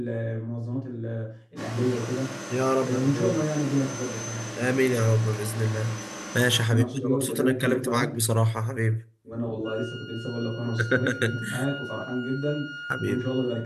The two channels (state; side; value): identical; both; correlation 1.00